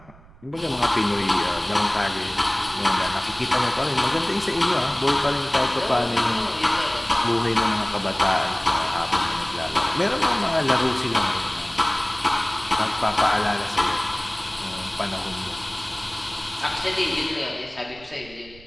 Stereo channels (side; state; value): right; noise; rumble, 23 dB below the sound